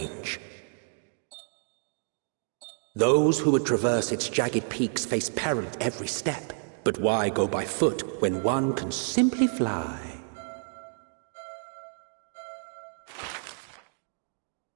Those who would traverse its jagged peaks face peril at every step. But why go by foot when one can simply fly?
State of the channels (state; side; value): silent; left; 58 dB below the other